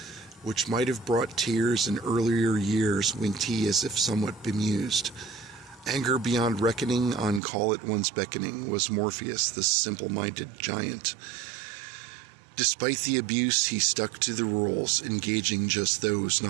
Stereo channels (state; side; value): drops out; left; at 7.4 s